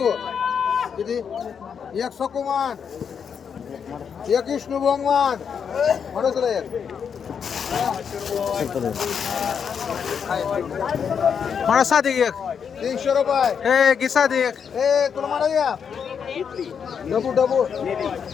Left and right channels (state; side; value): quieter; right; 7.0 dB